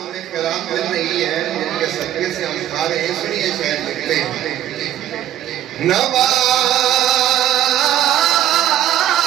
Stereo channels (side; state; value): left; quieter; 12.0 dB